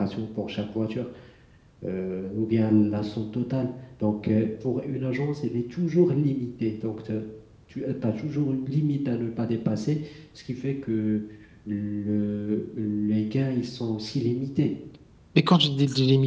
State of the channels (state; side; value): identical; both; correlation 1.00